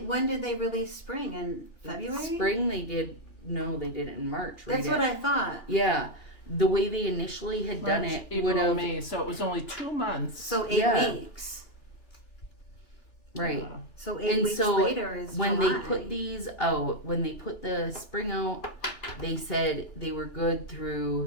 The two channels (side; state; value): right; late; 2.8 ms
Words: when did they release spring? In February? Spring they did, no, they did it in March. That's what I thought. Yeah, the way they initially had done March, it April, would have, May, so it was only 2 months. So 8 Yeah. weeks. right. So 8 And weeks so later is When July. they put these out, when they put the spring out, they said they were good